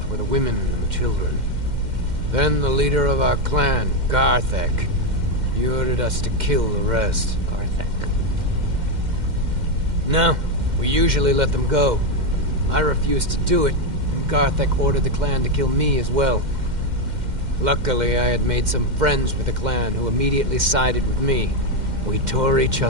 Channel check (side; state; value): left; late; 2.1 ms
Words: were the women and the children. Then the leader of our clan, Garthek, he ordered us to kill the rest. Garthek. No, we usually let them go. I refused to do it, and Garthek ordered the clan to kill me as well. Luckily, I had made some friends with the clan who immediately sided with me. We tore each